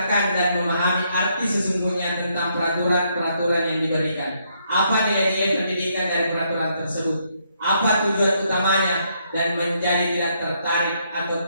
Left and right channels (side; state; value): both; inverted; correlation -0.74